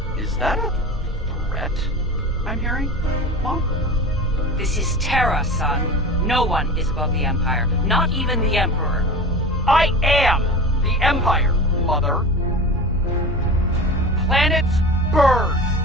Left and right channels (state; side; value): normal; both; correlation 0.32